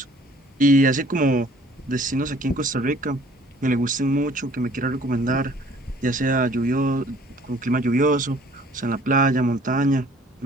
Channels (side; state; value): both; normal; correlation 0.55